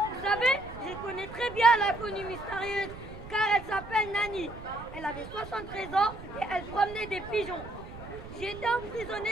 savez, je connais très bien l'inconnue mystérieuse car elle s'appelle Nani. Elle avait 73 ans et elle promenait des pigeons. J'ai été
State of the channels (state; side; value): noise; right; rumble, 14 dB below the sound